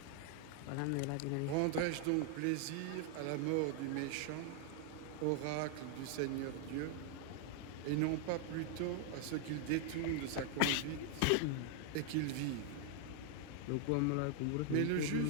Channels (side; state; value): both; different; correlation 0.00